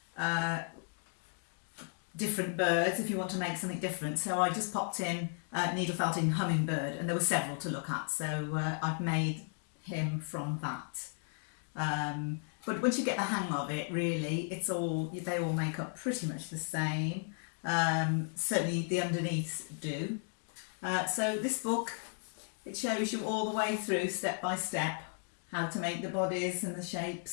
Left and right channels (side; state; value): right; silent; 54 dB below the other